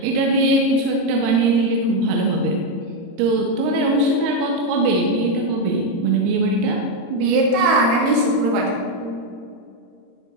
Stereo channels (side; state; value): left; late; 22 ms